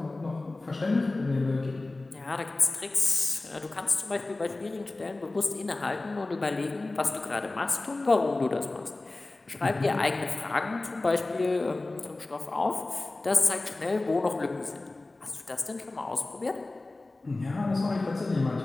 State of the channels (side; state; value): right; quieter; 3.1 dB